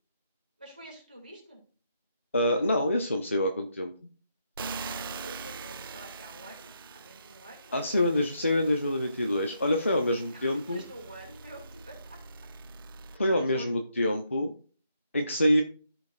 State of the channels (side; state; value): both; inverted; correlation -0.77